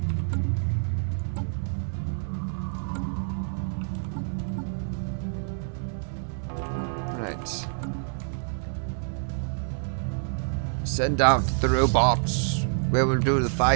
Right. Send out the robots. We will do the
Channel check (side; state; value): left; silent; 60 dB below the other